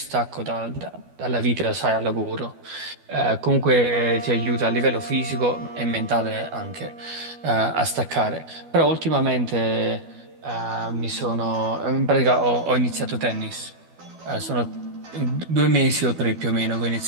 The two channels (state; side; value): late; left; 12 ms